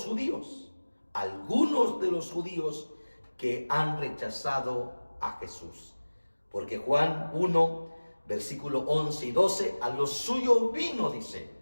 judíos, algunos de los judíos que han rechazado a Jesús. Porque Juan 1, versículo 11 y 12, a los suyos vino, dice,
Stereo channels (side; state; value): both; inverted; correlation -1.00